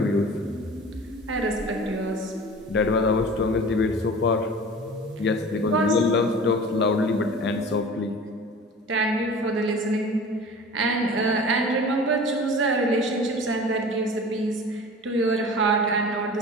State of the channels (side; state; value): both; normal; correlation 0.39